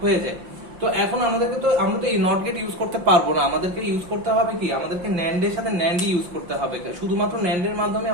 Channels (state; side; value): late; left; 5.7 ms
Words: হয়ে যায়। তো এখন আমরা তো এই নট গেট ইউজ করতে পারবো না, আমাদেরকে ইউজ করতে হবে কি, আমাদেরকে NAND এর সাথে NAND ইউজ করতে হবে, শুধুমাত্র NAND এর মাধ্যমে